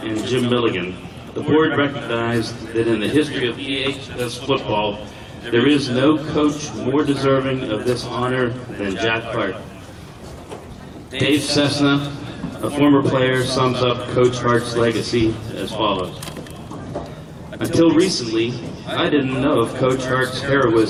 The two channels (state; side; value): identical; both; correlation 1.00